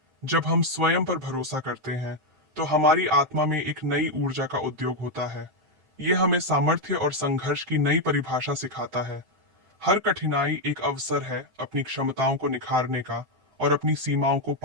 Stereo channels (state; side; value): late; left; 7.7 ms